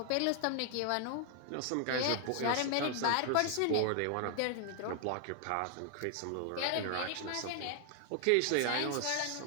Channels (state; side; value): different; both; correlation 0.00